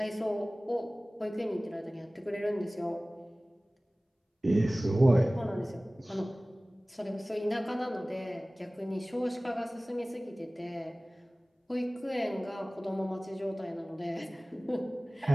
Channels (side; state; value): both; normal; correlation 0.98